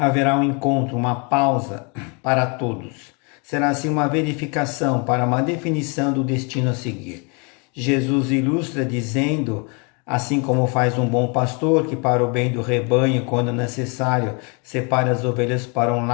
um encontro, uma pausa para todos. Será assim uma verificação para uma definição do destino a seguir. Jesus ilustra dizendo, assim como faz um bom pastor que para o bem do rebanho, quando necessário, separa as ovelhas para um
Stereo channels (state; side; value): quieter; right; 33.5 dB